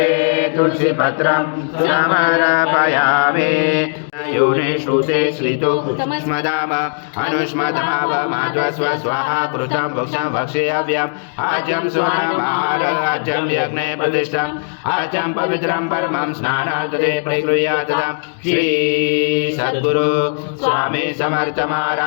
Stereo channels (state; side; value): silent; right; 66 dB below the other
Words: तुलसी पत्रं समर्पयामि। योने श्रुते श्रितो स्मदाम अनुष्मदाव माध्वस्व स्वाहा कृतं भक्षं भक्षेयव्यम् आजं स्वनमार आजं यज्ञे प्रतिष्ठम् आजं पवित्रं परमं स्नानार्थे प्रगृह्यातम्। श्री सद्गुरु स्वामी समर्थ